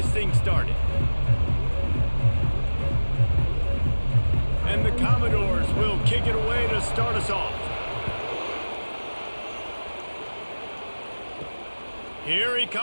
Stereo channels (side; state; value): both; inverted; correlation -1.00